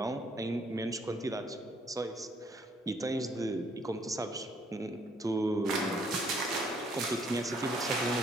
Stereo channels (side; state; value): both; normal; correlation 0.66